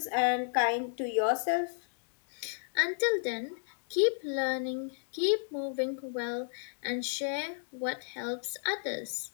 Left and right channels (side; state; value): right; silent; digital silence